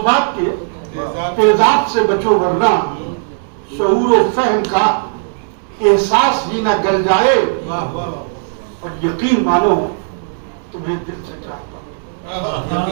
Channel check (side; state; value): left; silent; digital silence